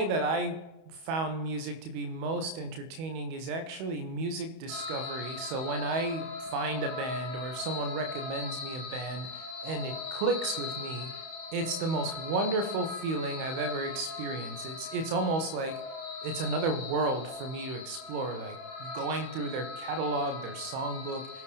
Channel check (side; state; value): left; late; 31 ms